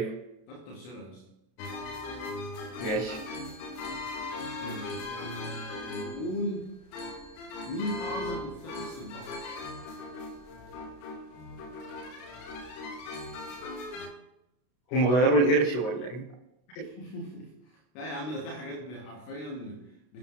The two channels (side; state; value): right; late; 32 ms